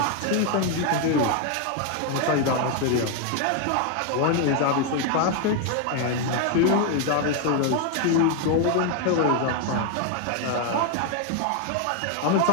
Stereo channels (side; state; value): both; different; correlation 0.01